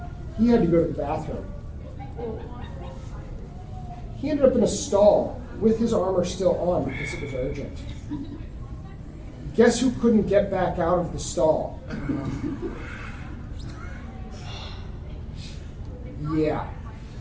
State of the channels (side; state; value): both; identical; correlation 1.00